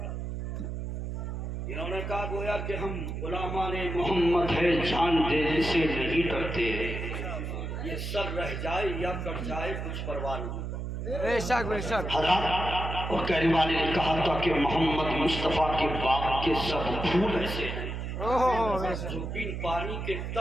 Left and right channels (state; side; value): noise; right; hum, 5 dB below the sound